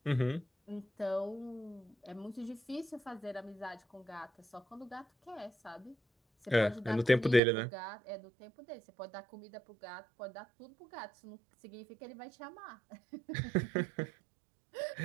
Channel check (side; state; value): left; drops out; at 7.4 s